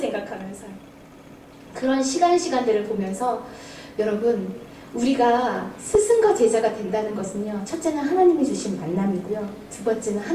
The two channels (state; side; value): identical; both; correlation 1.00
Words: 그런 시간들을 보면서 여러분, 우리가 스승과 제자가 된다는 것은요, 첫째는 하나님이 주신 만남이고요, 두 번째는